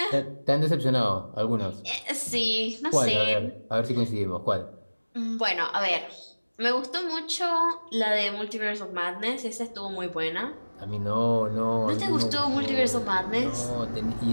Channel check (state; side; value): inverted; both; correlation -1.00